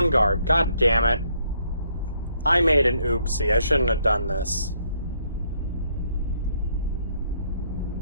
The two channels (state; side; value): inverted; both; correlation -0.70